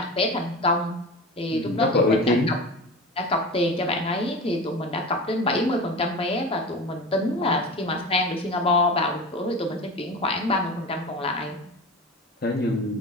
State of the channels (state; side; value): normal; both; correlation 0.31